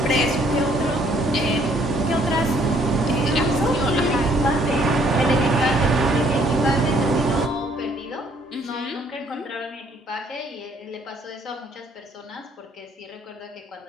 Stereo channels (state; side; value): normal; both; correlation 0.64